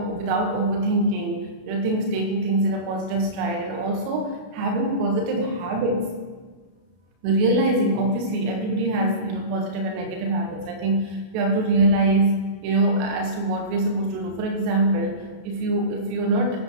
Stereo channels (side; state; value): left; late; 33 ms